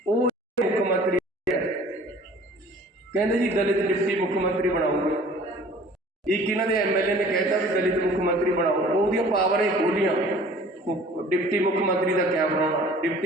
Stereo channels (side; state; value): both; normal; correlation 0.49